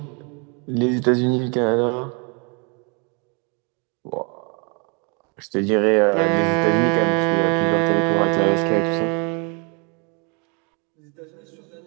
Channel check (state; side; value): quieter; left; 34.1 dB